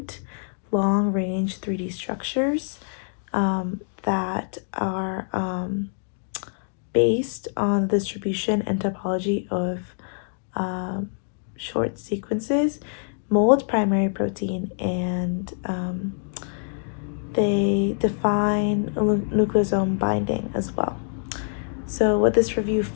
long-range 3D structures that are based on the distribution and topology of short sequences, mold primary protein, and they define nucleosome binding as well. So what this review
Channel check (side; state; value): right; silent; digital silence